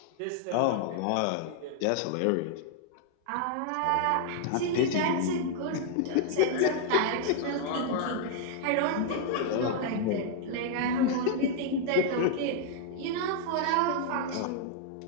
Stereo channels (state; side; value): different; both; correlation 0.00